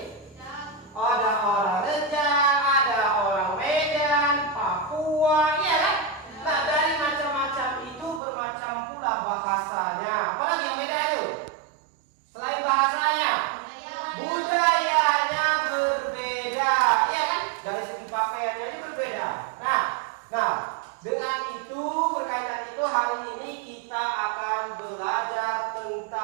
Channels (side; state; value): left; drops out; at 8.2 s